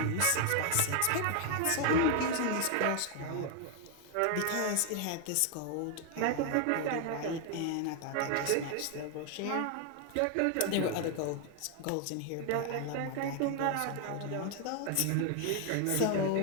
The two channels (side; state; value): both; different; correlation 0.00